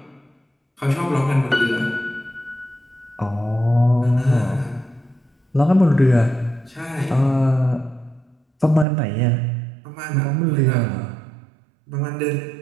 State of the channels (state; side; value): drops out; left; at 8.8 s